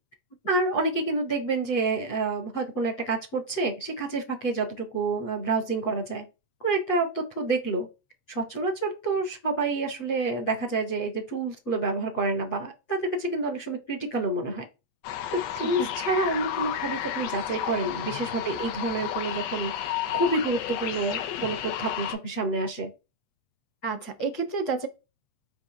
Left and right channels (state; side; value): late; right; 8.3 ms